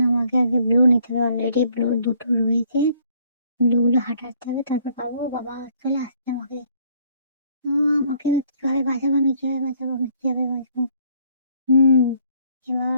আমাকে আগে ব্লু নিতে হবে, অলরেডি ব্লু দুটো রয়েছে। ব্লুগুলো হাঁটাতে হবে, তারপর পাবো। বাবা চলে আসছে আমাকে। আমাকে কিভাবে বাঁচাবো, আমি কিভাবে বাঁচাবো, আমি কিভাবে বাঁচবো? হুম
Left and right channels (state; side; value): inverted; both; correlation -0.64